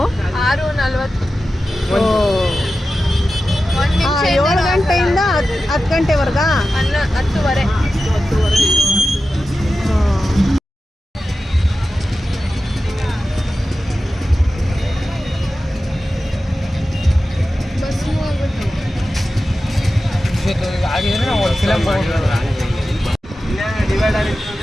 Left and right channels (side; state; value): both; normal; correlation 0.93